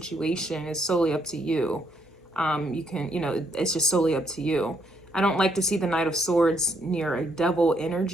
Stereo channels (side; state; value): both; normal; correlation 0.73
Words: is solely up to you. You can, it's just solely up to you. I don't like to see the Knight of Swords near a devil